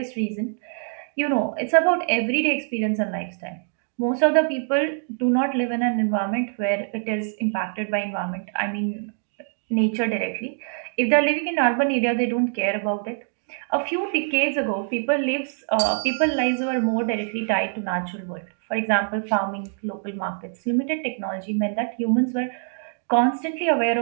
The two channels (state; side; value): silent; left; 55 dB below the other